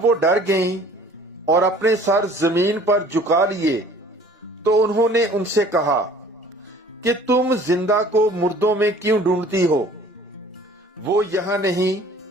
وہ ڈر گئیں اور اپنے سر زمین پر جھکا لیے تو انہوں نے ان سے کہا کہ تم زندہ کو مردوں میں کیوں ڈھونڈتی ہو؟ وہ یہاں نہیں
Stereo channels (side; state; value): both; normal; correlation 0.51